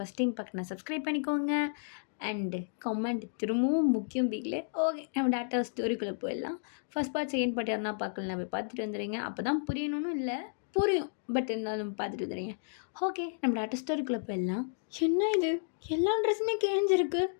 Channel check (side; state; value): right; silent; digital silence